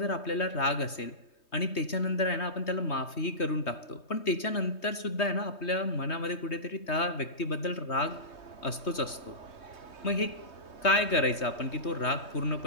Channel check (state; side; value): late; right; 3.2 ms